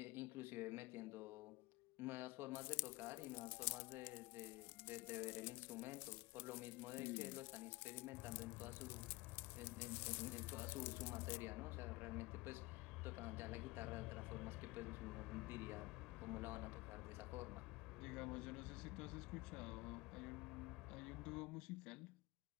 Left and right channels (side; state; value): right; quieter; 21.4 dB